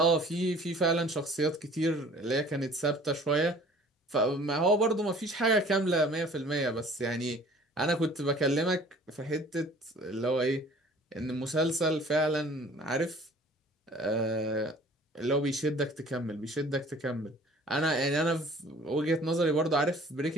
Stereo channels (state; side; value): normal; both; correlation 0.50